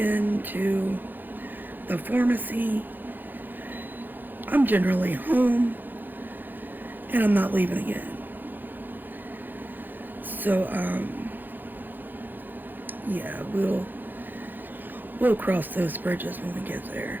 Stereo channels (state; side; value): late; left; 0.088 ms